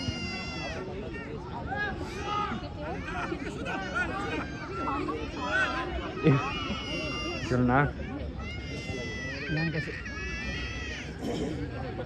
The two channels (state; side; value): identical; both; correlation 1.00